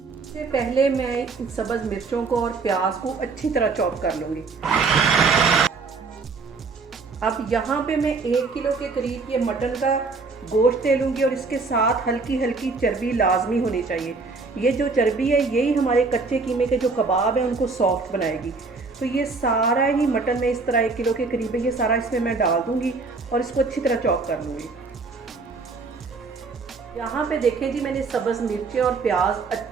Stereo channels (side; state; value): left; quieter; 4.2 dB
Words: इससे पहले मैं इन सब्ज़ मिर्चों को और प्याज को अच्छी तरह चॉप कर लूँगी। अब यहाँ पे मैं 1 किलो के करीब ये मटन का गोश्त ले लूँगी और इसके साथ हल्की हल्की चर्बी लाजमी होनी चाहिए। ये जो चर्बी है यही हमारे कच्चे कीमे के जो कबाब हैं उनको सॉफ्ट बनाएगी। तो ये सारा ही मटन में इस तरह 1 किलो के करीब है, ये सारा इसमें मैं डाल दूँगी और इसको अच्छी तरह चॉप कर लूँगी। यहाँ पे देखें जी, मैंने सब्ज़ मिर्चें और प्याज